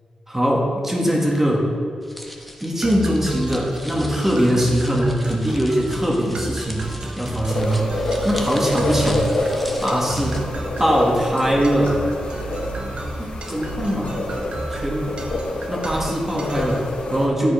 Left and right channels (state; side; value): normal; both; correlation 0.90